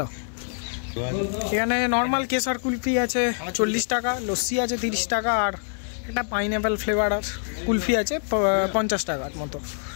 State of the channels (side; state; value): right; silent; 62 dB below the other